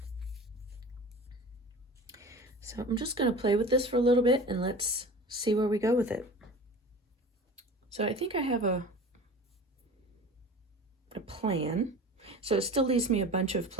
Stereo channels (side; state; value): both; normal; correlation 0.38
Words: So I'm just going to play with this for a little bit and let's see where we go with it. So I think I have a plan. So it still leaves me a bunch of